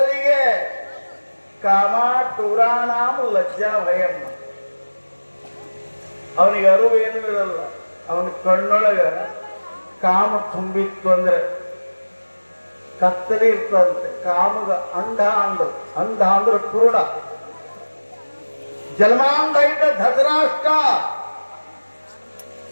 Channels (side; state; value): both; inverted; correlation -1.00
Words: ಕಾಮ ಟೂರಾಣಾಮ ಲಜ್ಜಾ ಭಯಮ್ಮ. ಅವನಿಗೆ ಅರಿವು ಏನೂ ಇರಲ್ಲ. ಅವನ ಕಣ್ಣೊಳಗ ಕಾಮ ತುಂಬಿತ್ತು ಅಂದ್ರೆ ಕತ್ತಲೆ ಇರ್ತದಂತೆ. ಕಾಮಗ ಅಂಧ ಅಂದ್ರೆ ಪೂರ್ಣ. ಜನ್ಮಾಂಧ ಇದ್ದ ಧೃತರಾಷ್ಟ್ರ,